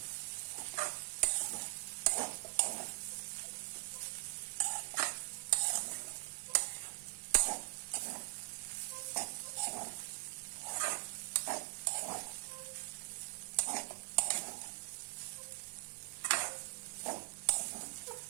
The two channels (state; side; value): silent; left; digital silence